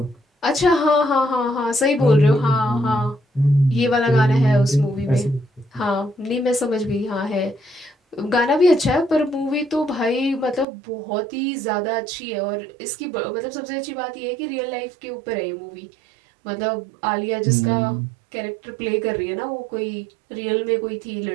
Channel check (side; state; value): left; drops out; at 10.7 s